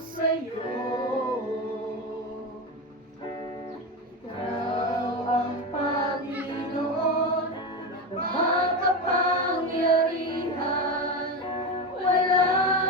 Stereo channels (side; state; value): both; normal; correlation 0.18